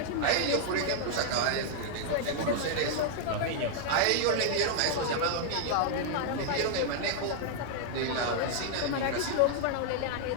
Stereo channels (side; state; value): both; different; correlation -0.01